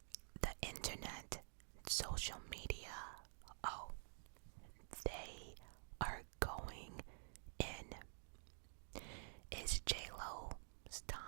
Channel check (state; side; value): silent; left; digital silence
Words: The internet, social media, oh, they are going in. Is J-Lo's